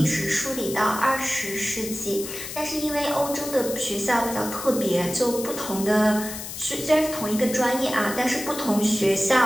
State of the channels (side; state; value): left; noise; hiss, 9 dB below the sound